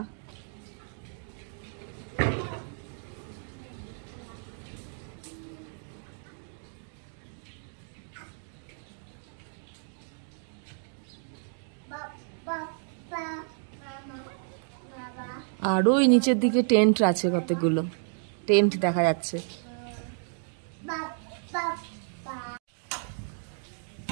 আর ওই নিচের দিকে টেন্ট আছে, কতগুলো টেন্ট দেখা যাচ্ছে।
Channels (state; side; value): silent; left; 57 dB below the other